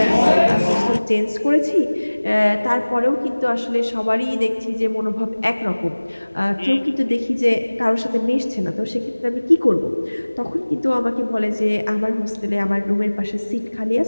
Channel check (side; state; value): both; inverted; correlation -1.00